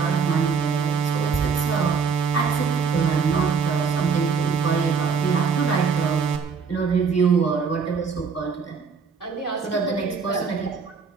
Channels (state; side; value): quieter; left; 5.7 dB